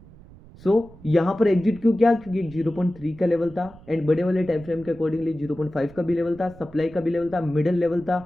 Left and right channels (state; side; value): noise; right; rumble, 21 dB below the sound